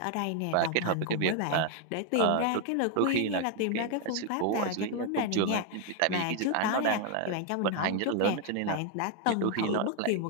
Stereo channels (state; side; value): different; both; correlation 0.00